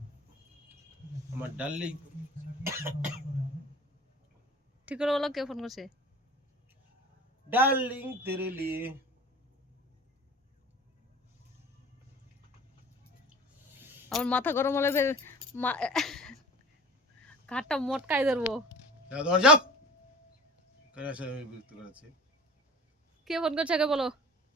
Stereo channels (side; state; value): both; normal; correlation 0.40